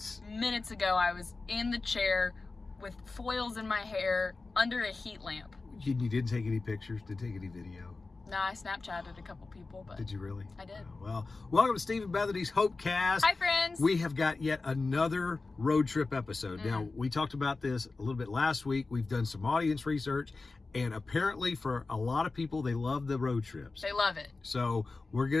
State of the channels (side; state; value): right; quieter; 3.7 dB